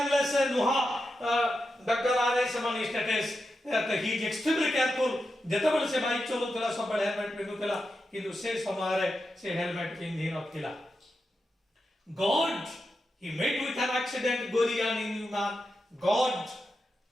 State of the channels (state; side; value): normal; both; correlation 0.88